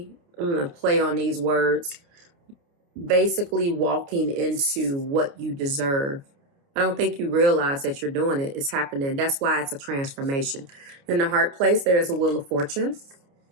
I'm going to play on these words, basically walking into what you deserve. I don't think you realize that you're doing it. It's happening. That's why it's a transformation. In the heart place, there is a Wheel of Fortune.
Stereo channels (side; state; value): left; late; 29 ms